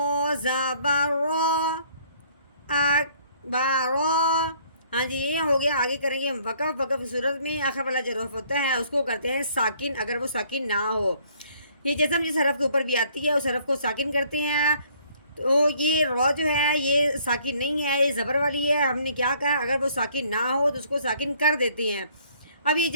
زبر رو اک با رو. ہاں جی، یہ ہو گیا. آگے کریں گے ہم وقف. وقف کی صورت میں آخر والا جو حرف ہوتا ہے اس کو کرتے ہیں ساکن اگر وہ ساکن نہ ہو. یہ جسم جس حرف کے اوپر بھی آتی ہے اس حرف کو ساکن کرتے ہیں. تو یہ رو جو ہے یہ ساکن نہیں ہے، یہ زبر والی ہے. ہم نے کیا کہا؟ اگر وہ ساکن نہ ہو تو اس کو ساکن کر دیتے ہیں. اب یہ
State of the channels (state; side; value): inverted; both; correlation -0.61